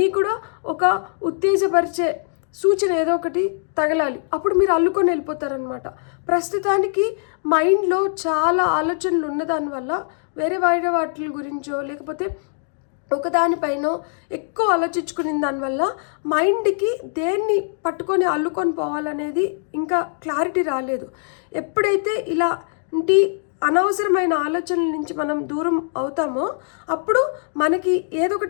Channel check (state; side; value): silent; right; digital silence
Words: కూడా ఒక ఉత్తేజపరిచే సూచన ఏదో ఒకటి తగలాలి. అప్పుడు మీరు అల్లుకొని వెళ్ళిపోతారనమాట. ప్రస్తుతానికి మైండ్లో చాలా ఆలోచనలు ఉన్నదానివల్ల వేరే వాటి గురించో లేకపోతే ఒకదానిపైన ఎక్కువ ఆలోచించుకునే దానివల్ల మైండ్కి దేన్ని పట్టుకొని అల్లుకొని పోవాలనేది ఇంకా క్లారిటీ రాలేదు. ఎప్పుడైతే ఇలాంటి అనవసరమైన ఆలోచనల నుంచి మనం దూరం అవుతామో అప్పుడు మనకి ఏదో